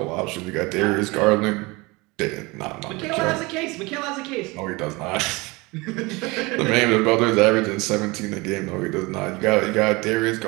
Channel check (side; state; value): left; quieter; 24.3 dB